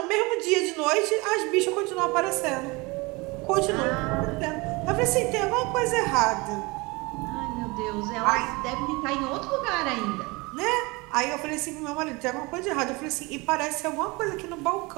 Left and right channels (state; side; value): quieter; left; 25.2 dB